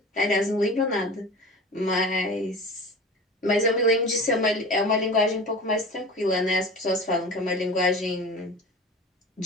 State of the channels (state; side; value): normal; both; correlation 0.35